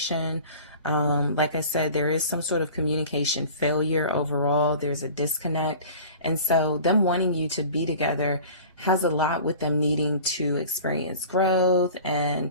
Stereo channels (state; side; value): inverted; both; correlation -0.41